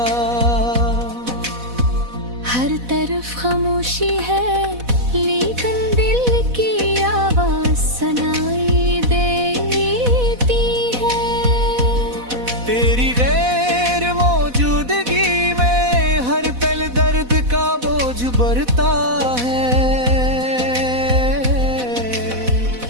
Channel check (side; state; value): left; late; 4.1 ms